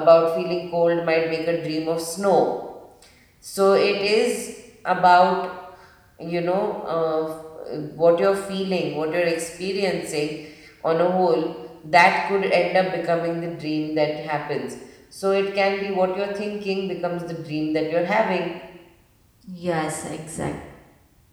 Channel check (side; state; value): both; identical; correlation 1.00